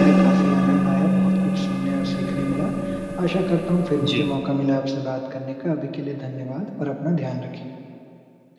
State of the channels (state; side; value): identical; both; correlation 1.00